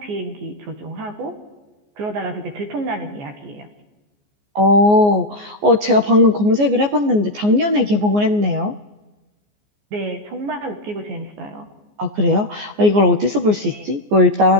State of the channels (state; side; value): late; left; 14 ms